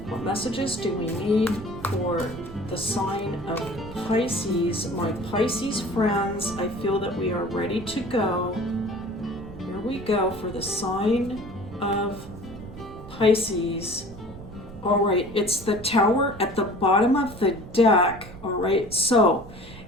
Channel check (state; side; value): noise; right; rumble, 16 dB below the sound